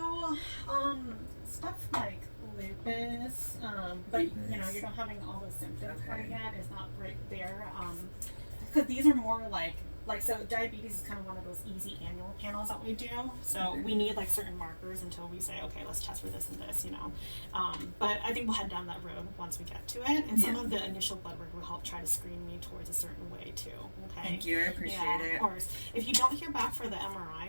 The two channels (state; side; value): inverted; both; correlation -1.00